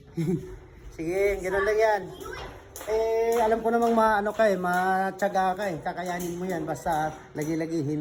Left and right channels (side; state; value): both; identical; correlation 1.00